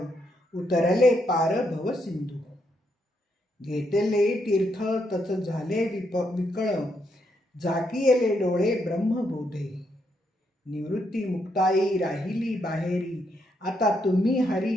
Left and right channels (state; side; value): normal; both; correlation 0.78